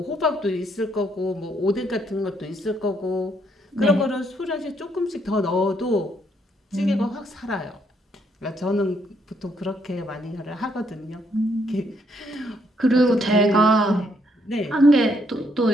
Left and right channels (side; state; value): both; normal; correlation 0.72